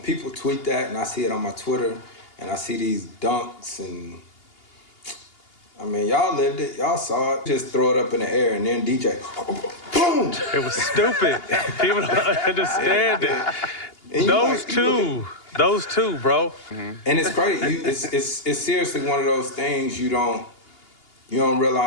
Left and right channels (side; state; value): right; late; 2.8 ms